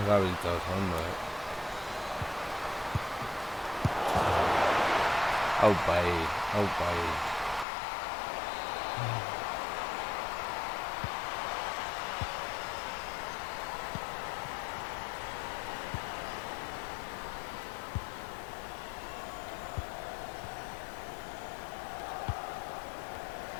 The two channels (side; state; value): right; drops out; at 7.7 s